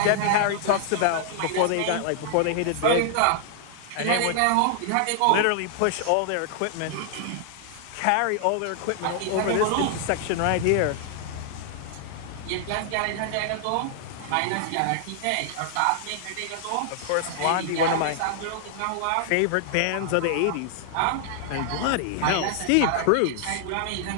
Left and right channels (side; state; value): both; different; correlation -0.01